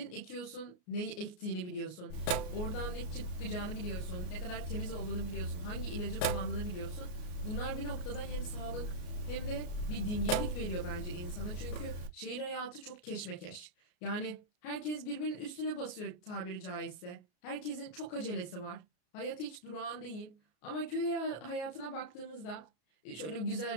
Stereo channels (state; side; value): late; right; 33 ms